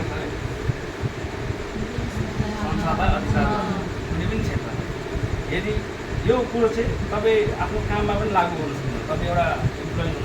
अरे? संसारलाई अधिकार कुनै पनि क्षेत्र। यदि यो कुरो चाहिँ तपाईँ आफ्नो काममा पनि लागू गर्नु सक्नुहुन्छ। तपाईँ एउटा इम्प्लोइ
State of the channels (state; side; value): identical; both; correlation 1.00